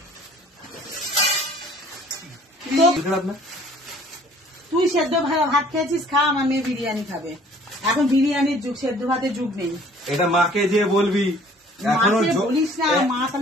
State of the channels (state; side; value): normal; both; correlation 0.54